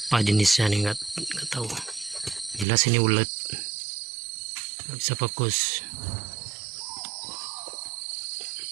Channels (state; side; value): drops out; left; at 2.7 s